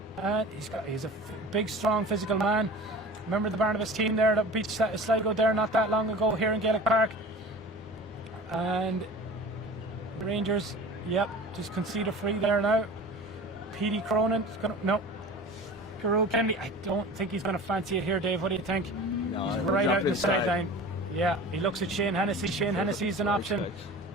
and he's a big, strong, physical man. Remember the Barnabas team there that beat Sligo there not that long ago here in Gaelic Park. And Rangers, yep, just concede a free there now. Petey Cronin, Garul Kennedy, I don't think he's going to fancy it here, Dave. What do you think? No, he's right out in the sideline. Yeah, he looks at Shane Hennessy. Shane Hennessy's an option.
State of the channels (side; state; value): both; normal; correlation 0.38